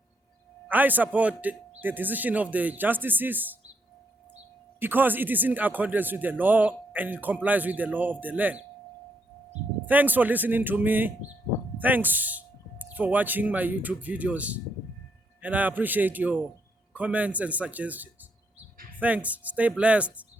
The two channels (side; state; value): both; normal; correlation 0.75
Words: I support the decision of the justices because it is in accordance with the law and it complies with the law of the land. Thanks for listening to me. Thanks for watching my YouTube videos. And I appreciate your comments and suggestions. Thanks. Stay blessed.